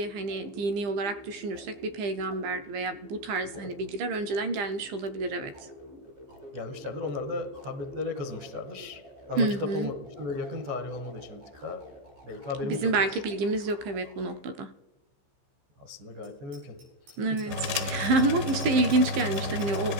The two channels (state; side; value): late; left; 15 ms